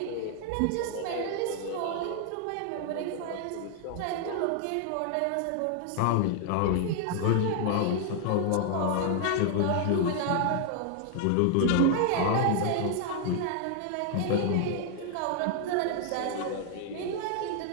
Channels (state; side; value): different; both; correlation 0.00